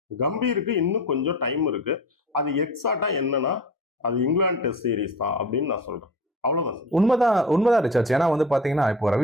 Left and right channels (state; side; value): normal; both; correlation 0.35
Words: கம்பீருக்கு இன்னும் கொஞ்சம் டைம் இருக்கு. அது எக்ஸாக்டா என்னன்னா அது இங்கிலாந்து டெஸ்ட் சீரீஸ் தான் அப்படின்னு நான் சொல்றேன். அவ்வளவுதான். உண்மைதான் ரிச்சர்ட்ஸ். ஏன்னா வந்து பாத்தீங்கன்னா இப்போ